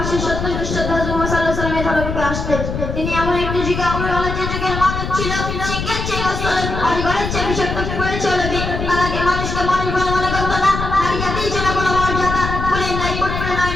তিনি এমন একটি যুগে যে যুগের মানুষ ছিল শিক্ষার চেয়ে অজগরের চেয়ে বিষাক্ত করে চলবে। তাকে মানুষকে মানুষ বলে মনে করতো না। নারী জাতির জন্য কোনো মর্যাদা বলে নাই করতে নয়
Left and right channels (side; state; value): left; noise; rumble, 4 dB below the sound